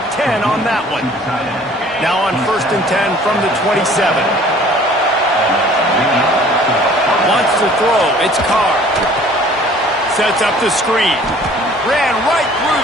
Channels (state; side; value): normal; both; correlation 0.52